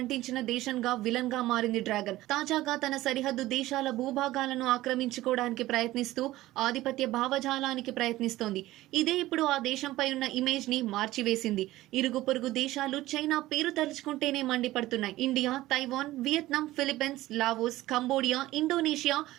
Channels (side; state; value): left; quieter; 16.5 dB